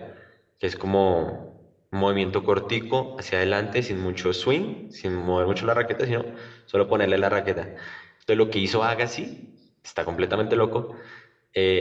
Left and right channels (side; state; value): both; identical; correlation 1.00